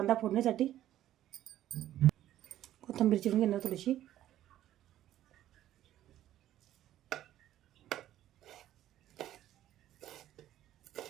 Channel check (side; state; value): left; quieter; 12.8 dB